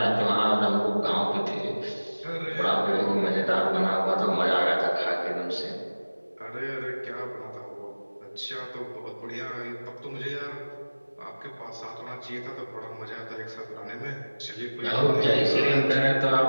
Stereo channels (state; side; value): inverted; both; correlation -1.00